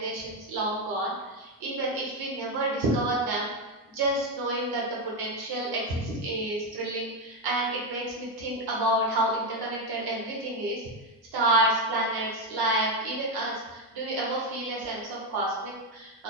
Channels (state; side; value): normal; both; correlation 0.08